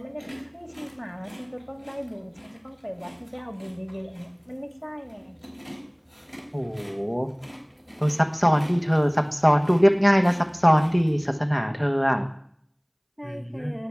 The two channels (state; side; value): identical; both; correlation 1.00